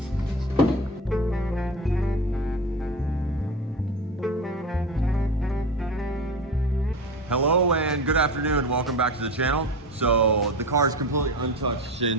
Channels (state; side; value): normal; both; correlation 0.27